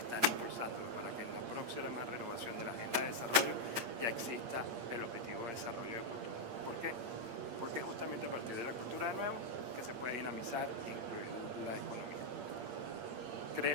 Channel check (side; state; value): left; late; 8.6 ms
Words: impulsándolo para que en la próxima renovación de la Agenda de Desarrollo ya exista el objetivo de desarrollo de cultura. ¿Por qué? Porque justamente a partir de la cultura de nuevo que se puede dinamizar e incluir la economía.